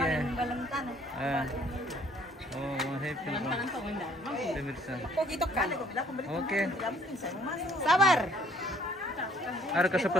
Oh, Mama Hepil. Pemirsa. Oke. Sabar. Ada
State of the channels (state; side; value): normal; both; correlation 0.60